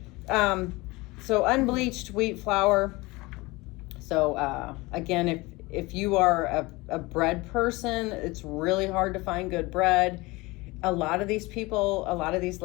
So unbleached wheat flour. So again, if you are a bread person, it's really hard to find good bread. A lot of these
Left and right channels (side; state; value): right; quieter; 22.7 dB